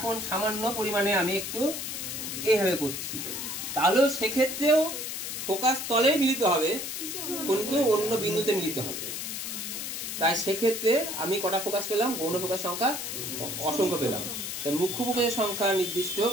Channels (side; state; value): left; noise; hiss, 5 dB below the sound